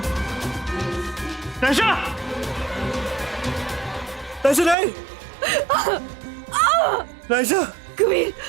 Naisha! Naisha नहीं! नायशा! कबीर,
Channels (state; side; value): drops out; left; at 4.8 s